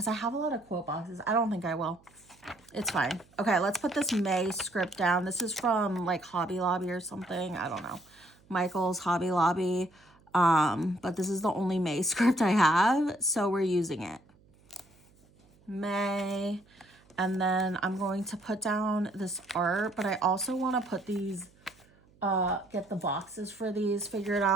I have a lot of quote boxes. I don't think I will. It's fine. Okay, let's put this May script down. This is from like Hobby Lobby or something. I don't know. Michael's Hobby Lobby. But this is the only May script I have, so we're using it. May. And then I'm going to put down this art, but I also want to put these, get the boxes for these figured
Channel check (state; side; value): noise; right; hum, 30 dB below the sound